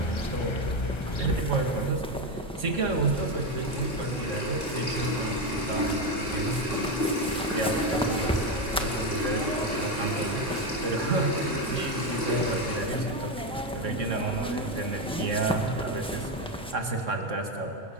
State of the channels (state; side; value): normal; both; correlation 0.11